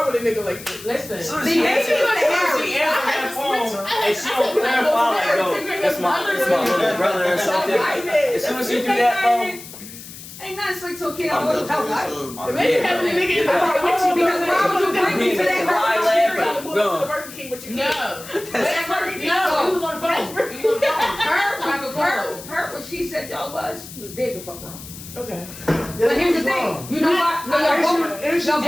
with a nigga like this. Listen. She answered that phone and she don't clarify like, yo, that's my little brother or something. As soon as you do that, bro. Ain't nothing slick so kid. I wouldn't help life. Maybe having a nigga in the car with you Because why would you bring me to that to the Burger King with your kid. No. He was on the phone. He was on the phone. Her, what she said y'all was, he was dead the fuck wrong. Okay. But here's the thing. You know what? No, She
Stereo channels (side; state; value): left; noise; hiss, 15 dB below the sound